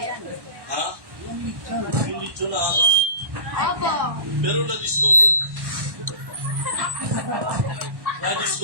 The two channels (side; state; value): left; late; 1.1 ms